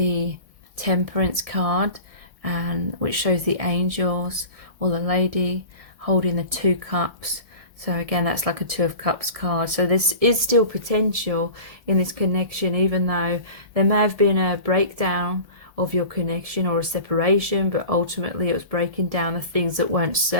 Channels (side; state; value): left; late; 1.7 ms